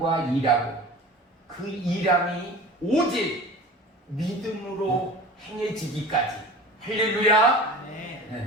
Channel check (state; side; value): normal; both; correlation 0.38